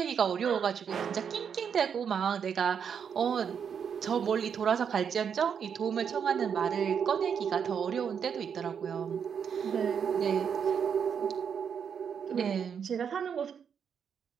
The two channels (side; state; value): left; quieter; 7.3 dB